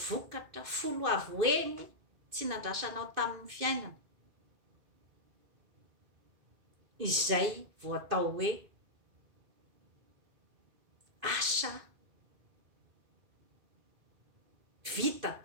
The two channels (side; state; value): left; late; 2.6 ms